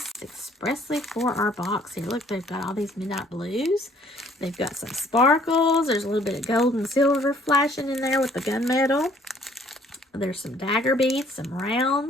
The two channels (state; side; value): normal; both; correlation 0.60